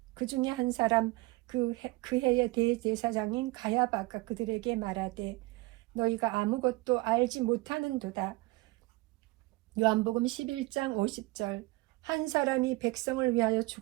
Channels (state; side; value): quieter; left; 22.4 dB